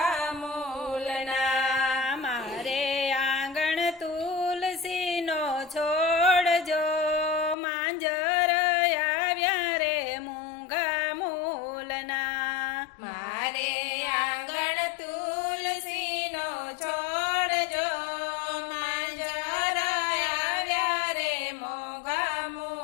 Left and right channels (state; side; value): drops out; right; at 7.6 s